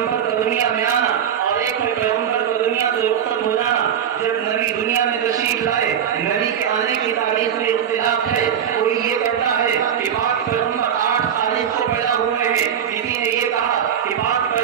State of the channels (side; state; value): left; quieter; 8.9 dB